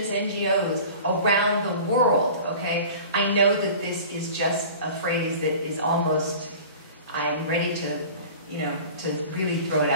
NGOs around the world, okay, I know that this is just a phrase that is almost, I'm ready to, you know, to really throw it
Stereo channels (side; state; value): both; inverted; correlation -0.40